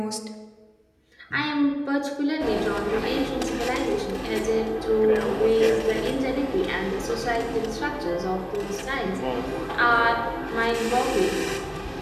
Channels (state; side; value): identical; both; correlation 1.00